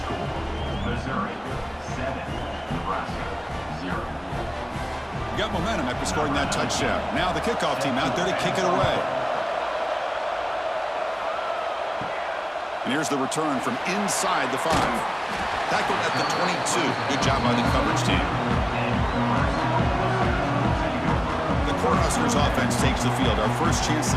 score Missouri 7, Nebraska 0. Got momentum after scoring that touchdown. Now the kickoff team out there to kick it away. And here's the return from inside the 5. Tackled at the 22. Good job by the coverage team. The Cornhuskers offense takes the field. Our first chance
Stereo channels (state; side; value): identical; both; correlation 1.00